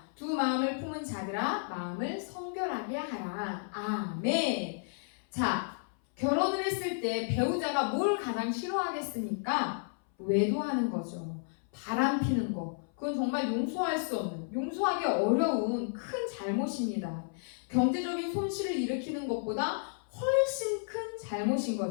두 마음을 품은 자들아 마음을 성결하게 하라. 아멘. 자, 결혼을 했을 때 배우자가 뭘 가장 싫어하겠습니까? 외도하는 거죠. 바람 피는 거. 그건 정말 용서할 수 없는, 용서하기 어려운 큰 잘못입니다. 경제적인 손실을 일으키는 것보다 훨씬 큰 잘못인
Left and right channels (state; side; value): silent; right; 56 dB below the other